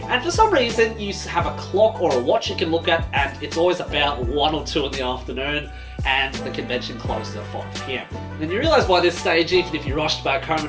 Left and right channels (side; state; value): both; identical; correlation 1.00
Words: And for some reason, you have a clock or a watch you can look at, and it's always about 1 or 2 in the afternoon, and the convention closes at 5 PM. Then you realise by this stage, even if you rushed back home